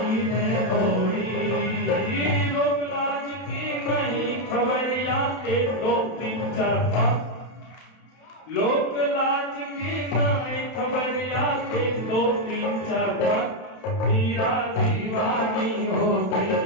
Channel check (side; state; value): right; late; 31 ms